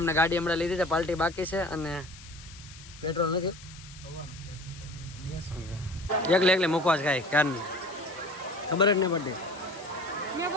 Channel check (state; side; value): noise; left; hiss, 18 dB below the sound